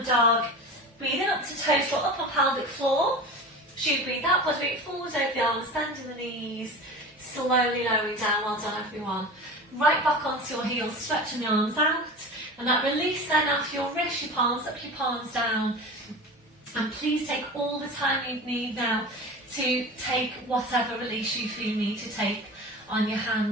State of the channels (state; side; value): normal; both; correlation 0.32